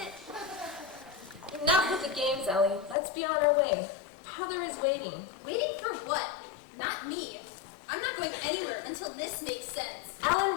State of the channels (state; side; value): drops out; right; at 3.0 s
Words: Enough with the games, Ellie. Let's be on our way. Father is waiting. Waiting for what? Not me. I'm not going anywhere until this makes sense.